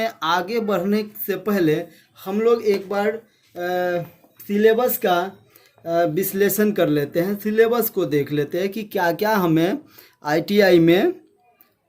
आगे बढ़ने से पहले हम लोग एक बार सिलेबस का विश्लेषण कर लेते हैं, सिलेबस को देख लेते हैं कि क्या क्या हमें आईटीआई में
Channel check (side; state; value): both; identical; correlation 1.00